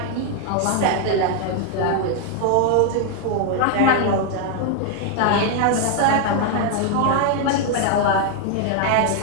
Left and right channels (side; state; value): both; different; correlation 0.01